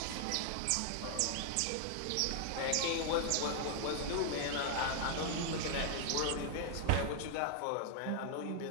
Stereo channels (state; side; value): different; both; correlation 0.00